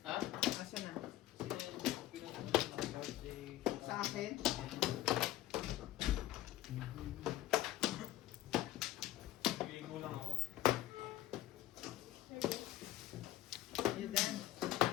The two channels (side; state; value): right; quieter; 14.6 dB